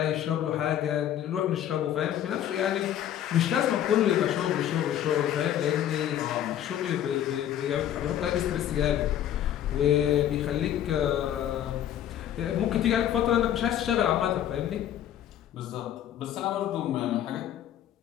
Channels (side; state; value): right; quieter; 11.0 dB